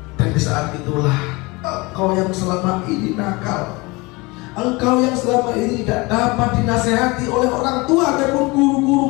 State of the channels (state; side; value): quieter; right; 24.6 dB